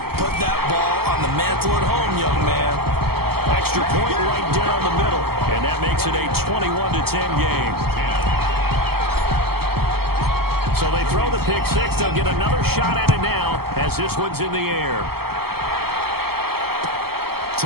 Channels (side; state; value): left; late; 0.95 ms